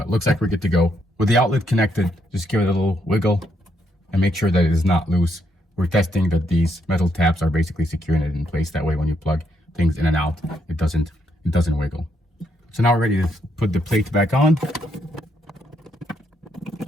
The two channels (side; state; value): both; normal; correlation 0.76